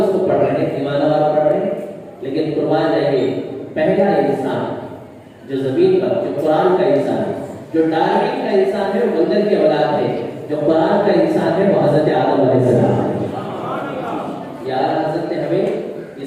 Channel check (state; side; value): identical; both; correlation 1.00